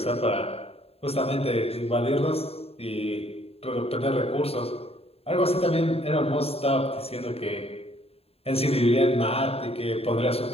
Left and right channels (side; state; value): right; late; 0.29 ms